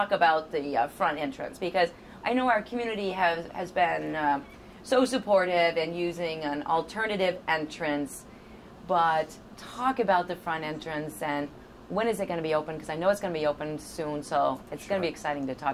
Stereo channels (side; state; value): both; identical; correlation 1.00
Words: about the front entrance, because I know our community has been so supportive in using an alternative entrance, but talk about the front entrance and when is it going to be open? Because I know it's going to be open soon, so it's going to be exciting to